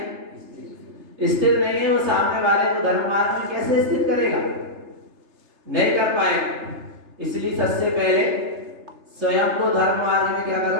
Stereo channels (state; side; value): late; left; 3.3 ms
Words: स्थित नहीं है, वो सामने वाले को धर्म मार्ग में कैसे स्थित करेगा? नहीं कर पाएगा। इसलिए सबसे पहले स्वयं को धर्म मार्ग में क्या